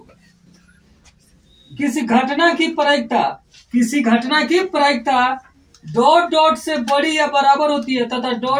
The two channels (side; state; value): both; identical; correlation 1.00